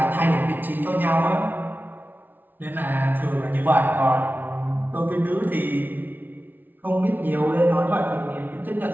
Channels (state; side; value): late; left; 0.088 ms